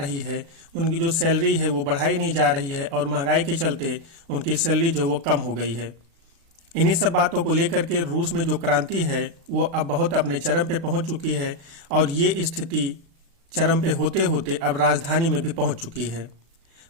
है। उनकी जो सैलरी है वो बढ़ाई नहीं जा रही है और महंगाई के चलते उनकी सैलरी जो वो कम हो गई है। इन्हीं सब बातों को लेकर के रूस में जो क्रांति है वो अब बहुत अपने चरम पे पहुंच चुकी है और ये स्थिति चरम पे होते होते अब राजधानी में भी पहुंच चुकी है।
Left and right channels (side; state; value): left; late; 36 ms